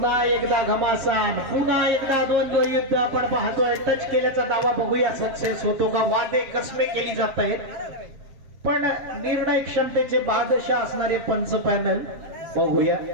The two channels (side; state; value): left; late; 7.5 ms